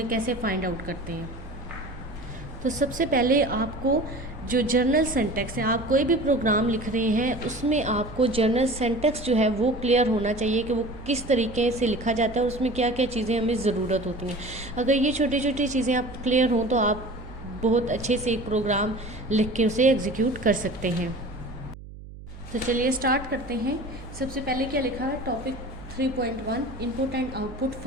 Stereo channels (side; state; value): right; noise; hum, 15 dB below the sound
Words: कैसे फाइंड आउट करते हैं। तो सबसे पहले आपको जो जर्नल सिंटैक्स है, आप कोई भी प्रोग्राम लिख रहे हैं उसमें आपको जर्नल सिंटैक्स जो है वो क्लियर होना चाहिए कि वो किस तरीके से लिखा जाता है और उसमें क्या क्या चीज़ें हमें ज़रूरत होती हैं। अगर ये छोटी छोटी चीज़ें आप क्लियर हों तो आप बहुत अच्छे से एक प्रोग्राम लिख के उसे एग्जीक्यूट कर सकते हैं। तो चलिए स्टार्ट करते हैं। सबसे पहले क्या लिखा है, topic 3.1 input and output